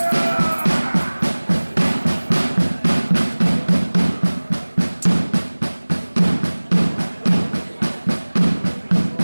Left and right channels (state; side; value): inverted; both; correlation -1.00